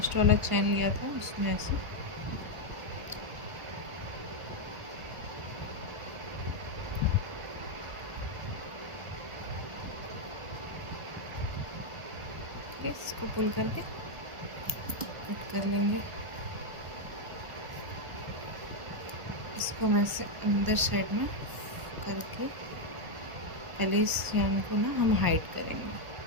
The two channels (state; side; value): late; left; 1.4 ms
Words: वाला चैन लिया था, उसमें ऐसे इसको पुल करके कट कर लेंगे। इसको हम ऐसे अंदर साइड में करके पहले इस चैन को ना हम हाइड करेंगे।